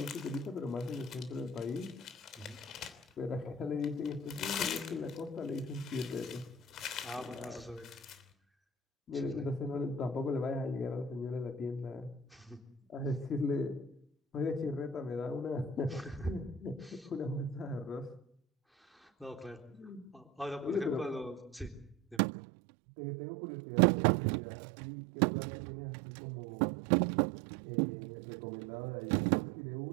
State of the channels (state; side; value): drops out; left; at 22.2 s